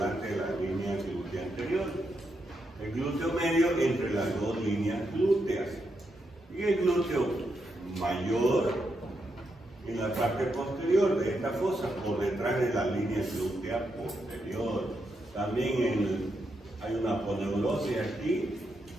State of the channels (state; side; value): normal; both; correlation 0.82